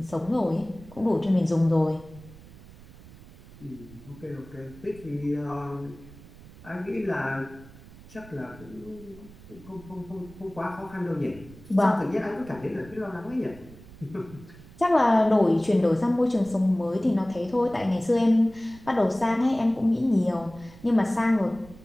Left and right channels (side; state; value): right; noise; rumble, 20 dB below the sound